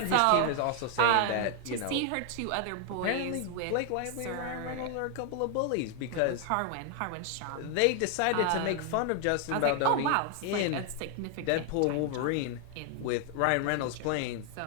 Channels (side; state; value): both; different; correlation 0.00